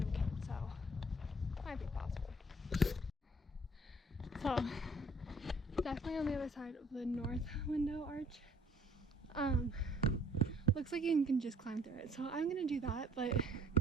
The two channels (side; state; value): both; normal; correlation 0.59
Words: kid, so might be possible. So definitely on the other side of the north window arch. Looks like you can just climb through it, so I'm gonna do that. But